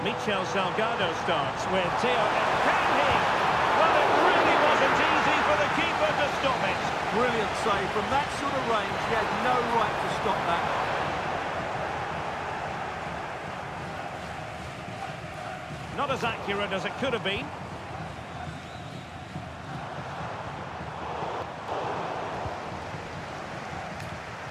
Michel Salgado starts with Theo. Can he? Well, it really wasn't easy for the keeper to stop it. Brilliant save. From that sort of range, he had no right to stop that. Not as accurate as it could have been.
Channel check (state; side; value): identical; both; correlation 1.00